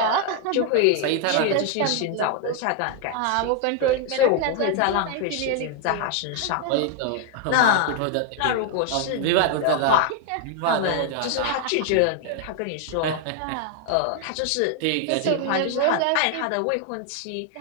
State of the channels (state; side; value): different; both; correlation 0.00